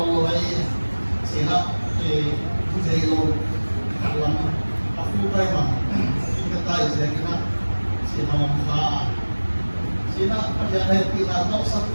ni, sila jelo kalam, aku time tayo siya kina sinamangka sina pagyanay pinatok sa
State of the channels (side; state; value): both; inverted; correlation -1.00